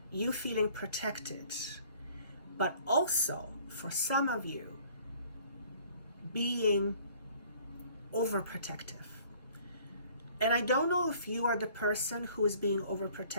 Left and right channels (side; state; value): both; inverted; correlation -0.55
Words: you feeling protected, but also for some of you being overprotective. And I don't know if you are the person who is being